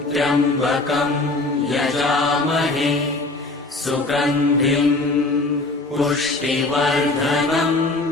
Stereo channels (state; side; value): quieter; right; 3.1 dB